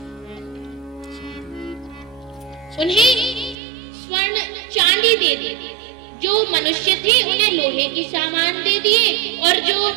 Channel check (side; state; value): left; drops out; at 3.6 s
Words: उन्हें स्वर्ण चांदी दे दी। जो मनुष्य थे उन्हें लोहे की सामान दे दिए और जो